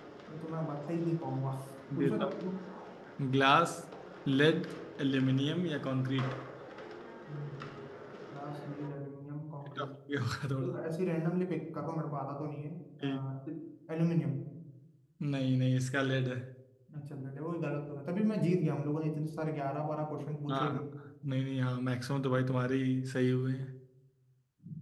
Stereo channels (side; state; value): both; identical; correlation 1.00